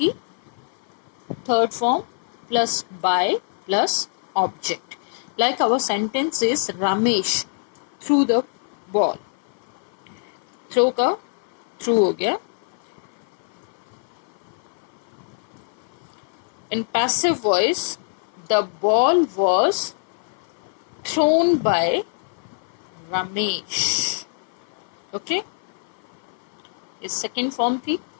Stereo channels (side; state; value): right; silent; 56 dB below the other